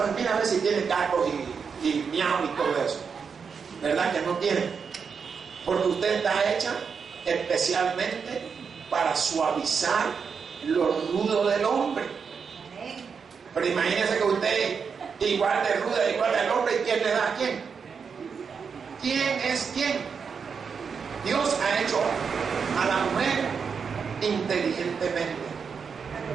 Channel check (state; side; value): quieter; left; 6.0 dB